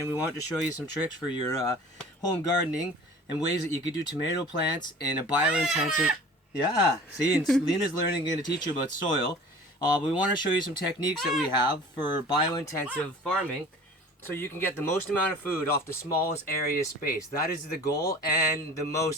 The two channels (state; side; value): normal; both; correlation 0.43